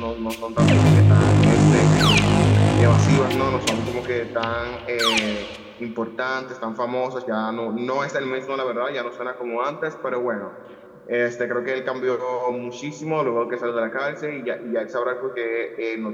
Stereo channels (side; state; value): both; identical; correlation 1.00